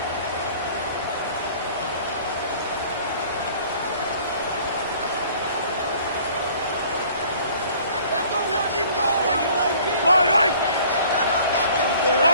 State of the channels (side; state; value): both; inverted; correlation -0.52